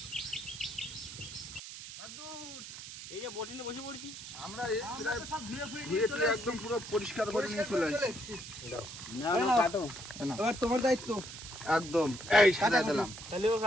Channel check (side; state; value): right; noise; hiss, 11 dB below the sound